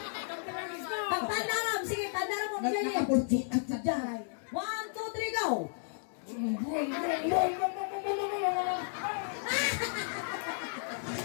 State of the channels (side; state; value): right; silent; digital silence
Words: Pagpandaram, sige, pandaram mo. Nakapulti at saday. 1, 2, 3, go! Ako